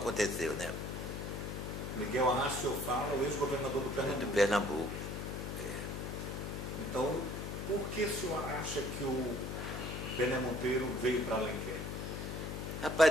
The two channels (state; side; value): noise; left; hum, 5 dB below the sound